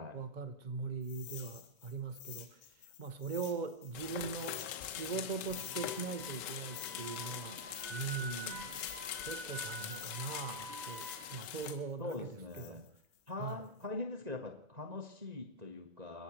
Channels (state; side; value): late; left; 2.0 ms